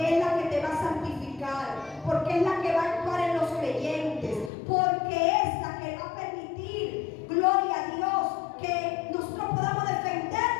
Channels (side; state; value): right; drops out; at 4.5 s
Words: es la que te va a santificar, porque es la que va a actuar en los creyentes, porque es la que va a permitir, gloria a Dios, que nosotros podamos